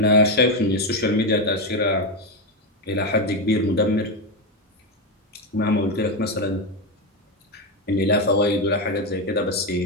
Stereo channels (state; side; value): normal; both; correlation 0.10